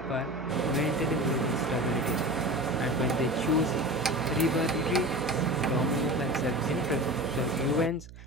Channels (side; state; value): right; noise; hum, 17 dB below the sound